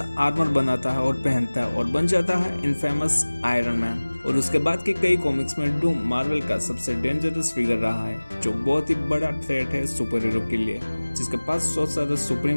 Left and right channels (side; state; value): both; inverted; correlation -1.00